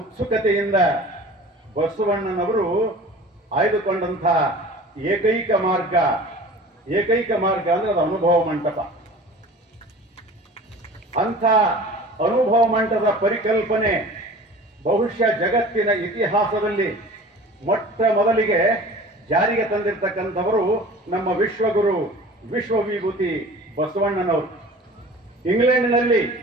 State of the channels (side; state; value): both; normal; correlation 0.42